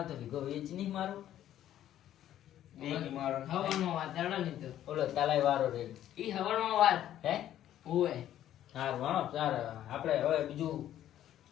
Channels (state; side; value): quieter; right; 11.8 dB